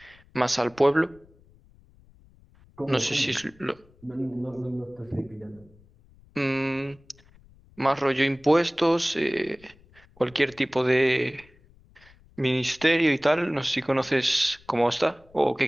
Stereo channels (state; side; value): noise; left; rumble, 28 dB below the sound